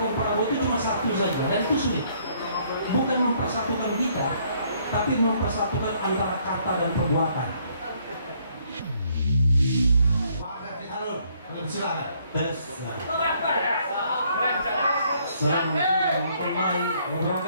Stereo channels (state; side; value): inverted; both; correlation -0.66